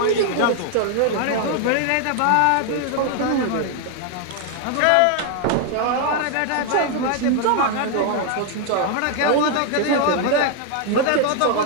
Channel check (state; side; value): different; both; correlation 0.00